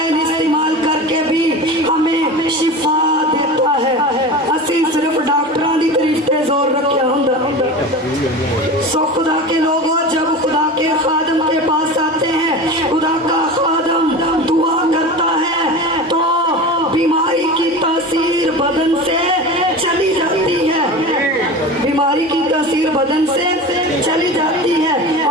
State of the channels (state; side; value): normal; both; correlation 0.31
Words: इस्तेमाल करके भी हमें शिफा देता है। असी सिर्फ डॉक्टरों की तारीफ पे जोर रखा होंदा। सो खुदा के लोगों, जब खुदा के खादम के पास आते हैं, खुदा का खादम दुआ करता है तो बीमारी की तासीर बदन से चली जाती है, बीमारी की तासीर बदन से चली जाती है,